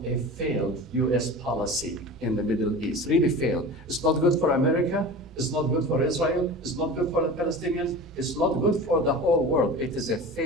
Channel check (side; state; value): both; normal; correlation 0.34